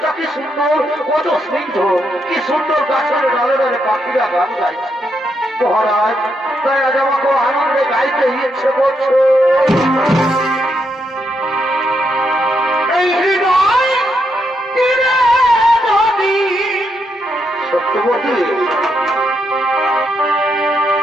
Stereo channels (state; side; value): normal; both; correlation 0.79